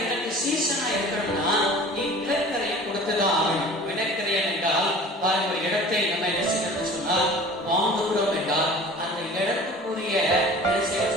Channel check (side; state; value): both; normal; correlation 0.43